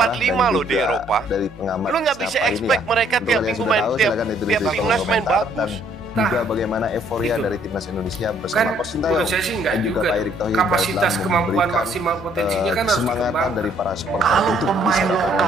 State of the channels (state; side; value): normal; both; correlation 0.64